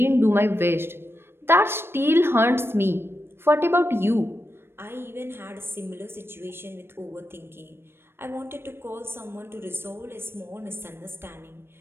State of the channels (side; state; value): left; late; 0.12 ms